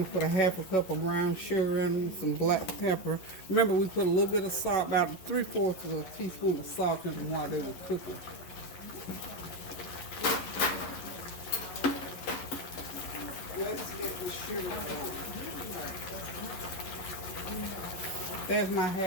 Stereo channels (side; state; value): right; late; 11 ms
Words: to put a half a cup of brown sugar in, some black pepper. Remember, we put a little bit of salt, about 3/4 of a teaspoon of salt in them while they were cooking. Let's get the sugar going. There's my